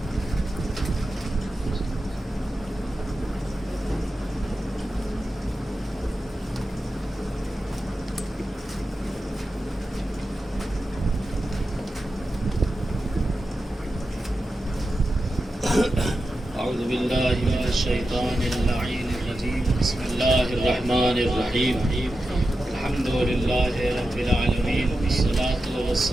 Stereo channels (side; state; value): both; normal; correlation 0.91